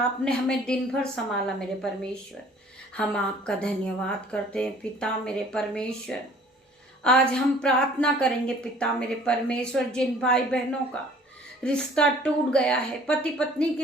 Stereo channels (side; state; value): both; normal; correlation 0.53